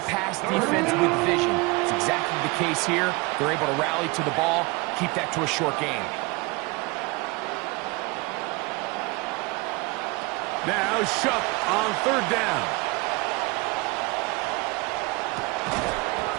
pass defense with vision. It's exactly the case here. They're able to rally to the ball, keep that to a short game. Now Shuck on third down.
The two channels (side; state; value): left; quieter; 25.7 dB